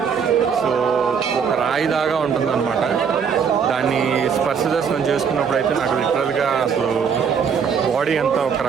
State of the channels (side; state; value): left; quieter; 6.7 dB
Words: సో ఒక రాయిదాగా ఉంటుంది అనమాట. దాన్ని స్పర్శ దర్శనం చేసుకున్నప్పుడు అయితే నాకు లిటరల్గా అసలు బాడీ అంతా ఒక